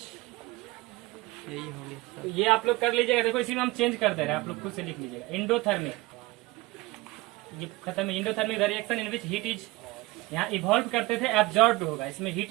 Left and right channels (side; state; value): left; quieter; 20.7 dB